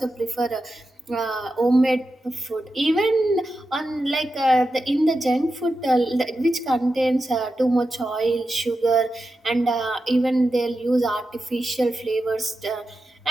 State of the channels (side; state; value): both; normal; correlation 0.90